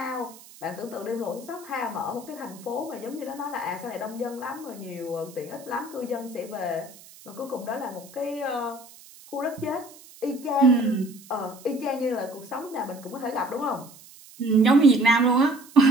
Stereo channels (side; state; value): right; noise; hiss, 21 dB below the sound